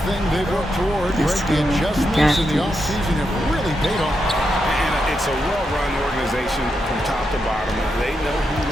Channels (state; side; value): normal; both; correlation 0.84